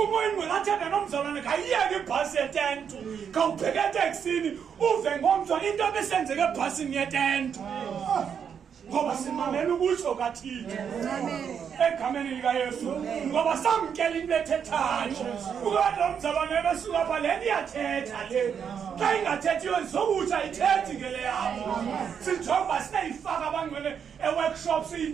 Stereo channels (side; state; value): left; quieter; 7.5 dB